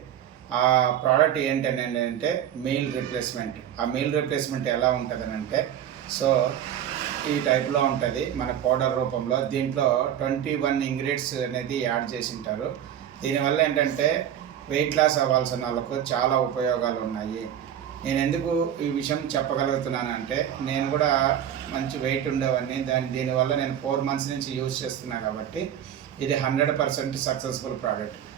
ఆ ప్రోడక్ట్ ఏంటని అంటే మీల్ రీప్లేస్మెంట్. ఆ మీల్ రీప్లేస్మెంట్ ఎలా ఉంటుందని అంటే, సో ఈ టైప్లో ఉంటుంది మన పౌడర్ రూపంలో. దీంట్లో 21 ఇంగ్రీడియంట్స్ అనేది యాడ్ చేసి ఉంటారు. దీనివల్ల ఏంటంటే వెయిట్ లాస్ అవ్వాల్సిన వాళ్ళకు చాలా ఉపయోగాలు ఉన్నాయి. నేను ఎందుకు ఈ విషయం చెప్పగలుగుతున్నానంటే, నేను కూడా మంచి వెయిట్ ఉండేవాడిని. దీనివల్ల నేను 4 months నుంచి యూజ్ చేస్తున్నా కాబట్టి ఇది 100% సక్సెస్ఫుల్ ప్రోడక్ట్.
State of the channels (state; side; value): quieter; left; 10.1 dB